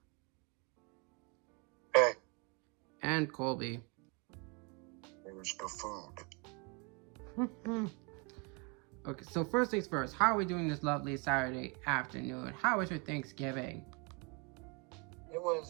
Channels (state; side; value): quieter; left; 30.3 dB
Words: Hey. And Colby. There's no food. Okay, so first things first, how are we doing this lovely Saturday afternoon? How was your Thanksgiving? It